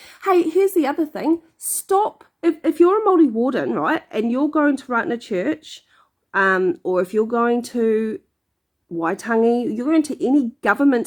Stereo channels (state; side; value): identical; both; correlation 1.00